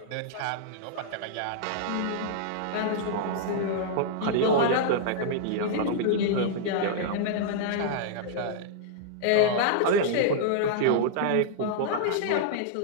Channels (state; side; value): different; both; correlation -0.01